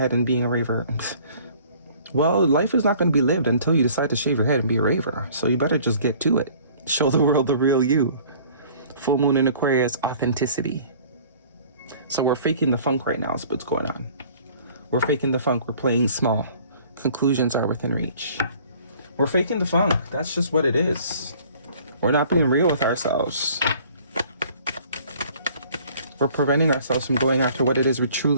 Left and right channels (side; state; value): both; inverted; correlation -0.52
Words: and being a raver. Well, life is not going to be lived until you decide to shave your head and be a raver. So you better just get to it. Show the world the real you. Full moon in Aquarius, authenticity. So we're faking the funk right now is what's going on. We're faking the funk. We're playing small. Conclusions are within reach. We're faking the funk. That's just what it is. We're not being real with ourselves. We're preventing ourselves from going after what it is we